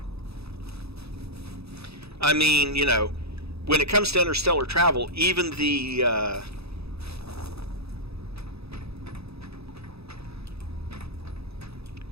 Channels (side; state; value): left; late; 0.78 ms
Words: I mean, you know, when it comes to interstellar travel, even the